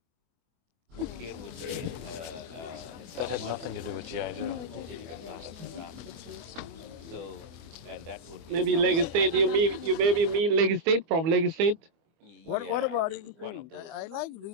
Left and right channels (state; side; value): late; left; 24 ms